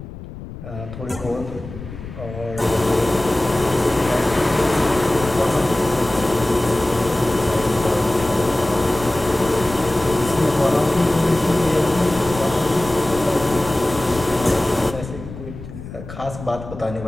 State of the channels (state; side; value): noise; left; rumble, 12 dB below the sound